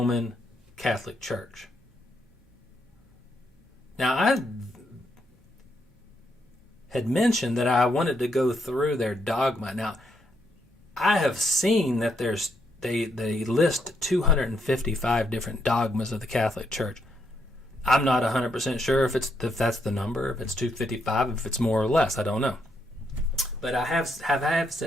Catholic Church. Now, I had mentioned that I wanted to go through their dogma. Now, I have seen that they list 255 different dogmas of the Catholic Church. I'm not 100% sure if that's the number, if it's 255, if it's more or less. I don't know. But I have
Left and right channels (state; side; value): normal; both; correlation 0.77